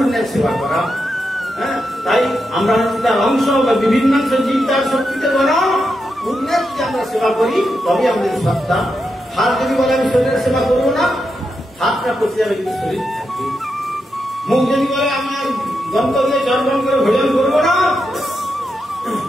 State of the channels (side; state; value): both; normal; correlation 0.85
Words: সেবা করা। হ্যাঁ, তাই আমরা তার অংশ বা বিভিন্ন জীব তার শক্তিতে বলা পূর্ণের যদি আমরা সেবা করি তবে আমাদের সত্তা। হাত যদি বলে আমি শরীরের সেবা করবো না, হাতটা পচে যাবে কিন্তু শরীর থাকবে। মুখ যদি বলে আমি আর দন্ত দিয়ে চর্বণ করে ভোজন করবো না,